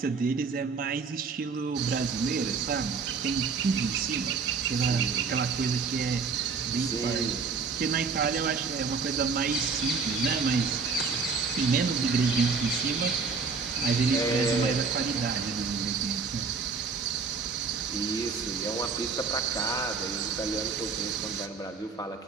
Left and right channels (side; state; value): left; quieter; 5.0 dB